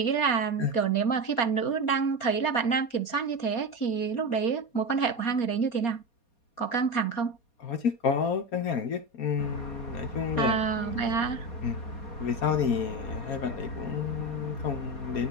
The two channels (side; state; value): right; late; 4.2 ms